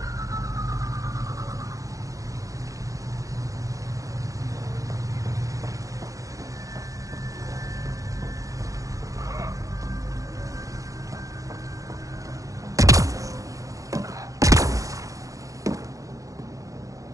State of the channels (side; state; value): left; late; 0.16 ms